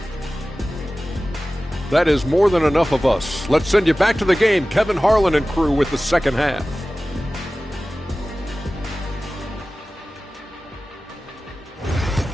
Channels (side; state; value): both; normal; correlation 0.96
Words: That is more than enough of us. Let's send you back to the game. Kevin Harlan and crew with the second half.